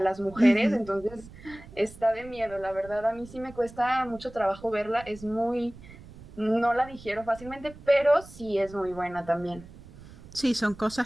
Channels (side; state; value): right; noise; rumble, 19 dB below the sound